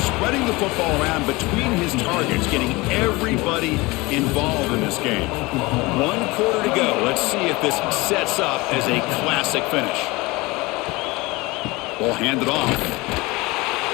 the football around between his targets, getting everybody involved in this game. 1 quarter to go. Let's see if this sets up as a classic finish. Ball handed off.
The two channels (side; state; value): right; quieter; 22.9 dB